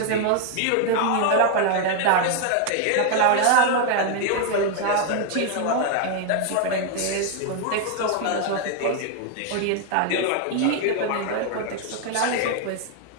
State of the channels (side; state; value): both; different; correlation 0.01